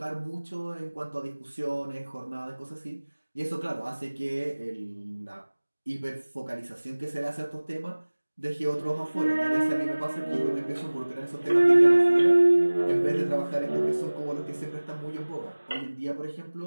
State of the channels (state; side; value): inverted; both; correlation -1.00